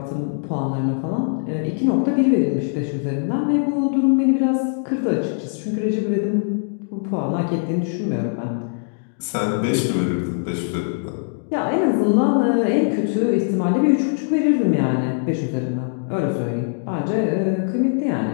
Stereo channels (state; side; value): silent; right; digital silence